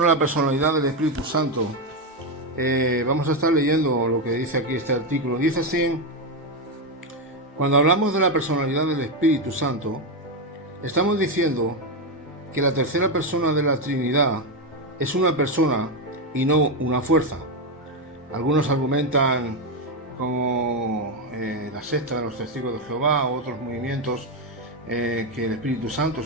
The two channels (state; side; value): normal; both; correlation 0.08